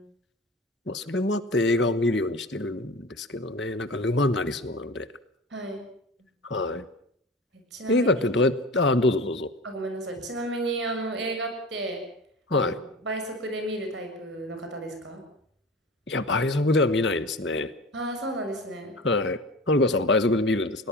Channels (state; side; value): normal; both; correlation 0.35